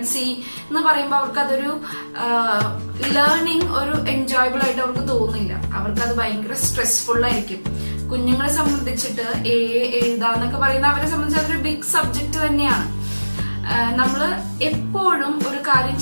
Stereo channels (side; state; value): both; inverted; correlation -1.00